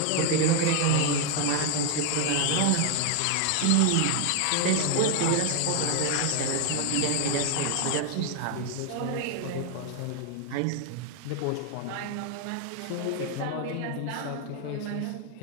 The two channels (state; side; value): different; both; correlation 0.00